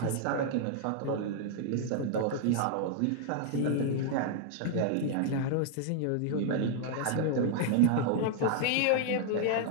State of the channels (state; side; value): different; both; correlation 0.00